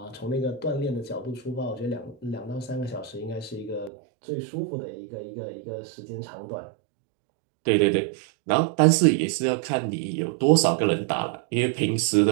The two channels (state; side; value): drops out; left; at 3.9 s